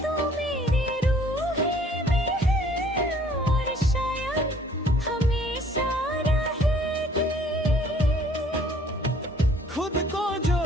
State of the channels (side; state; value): both; normal; correlation 0.58